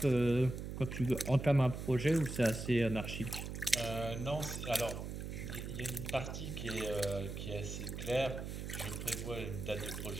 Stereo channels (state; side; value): noise; right; hum, 6 dB below the sound